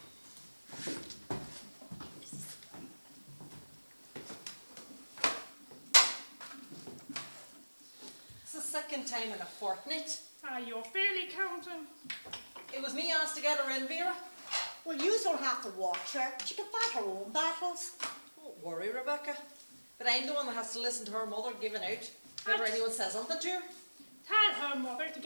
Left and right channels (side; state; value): both; inverted; correlation -1.00